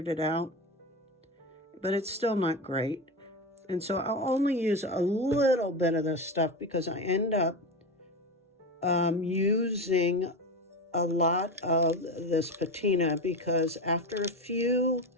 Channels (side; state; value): both; normal; correlation 0.21